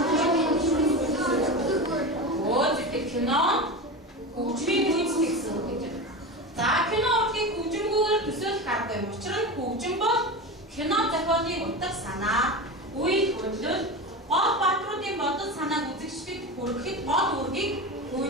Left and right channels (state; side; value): normal; both; correlation 0.24